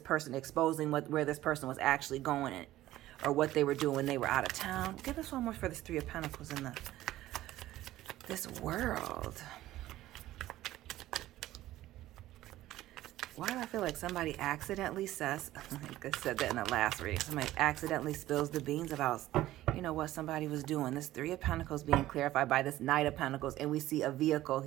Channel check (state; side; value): quieter; left; 15.1 dB